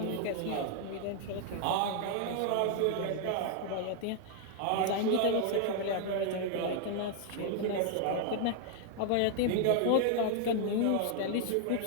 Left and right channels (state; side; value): different; both; correlation 0.00